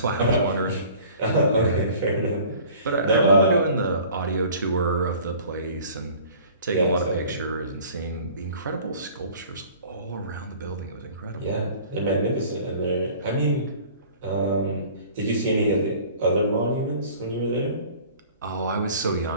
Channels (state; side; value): inverted; both; correlation -0.48